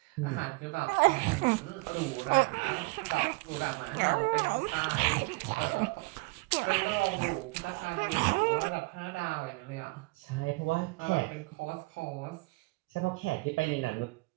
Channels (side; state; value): left; quieter; 26.1 dB